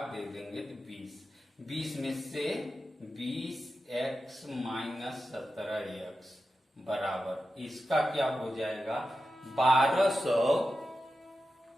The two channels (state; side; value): normal; both; correlation 0.91